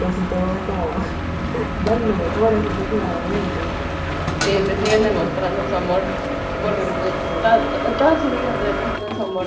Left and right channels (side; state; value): both; identical; correlation 1.00